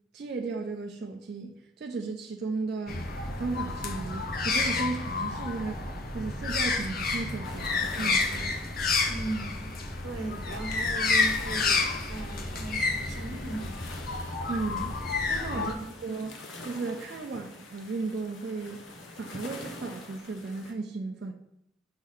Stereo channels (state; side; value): normal; both; correlation 0.51